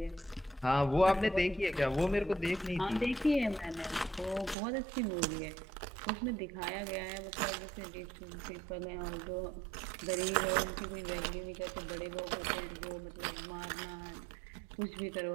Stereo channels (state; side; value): drops out; left; at 4.5 s